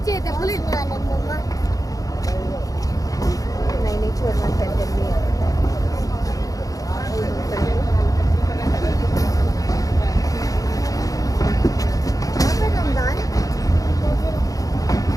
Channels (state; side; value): late; right; 0.17 ms